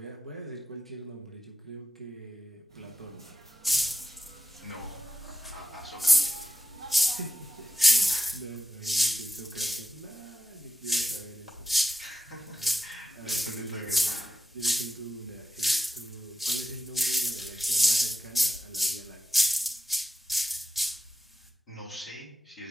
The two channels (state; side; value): normal; both; correlation 0.89